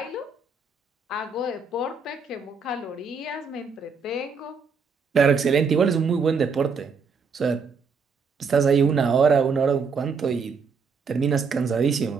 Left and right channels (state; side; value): quieter; left; 5.1 dB